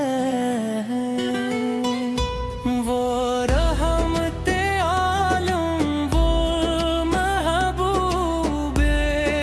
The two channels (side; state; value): both; identical; correlation 1.00